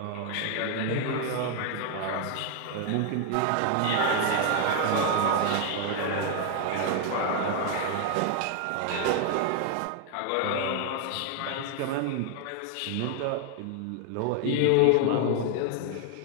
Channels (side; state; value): both; different; correlation 0.00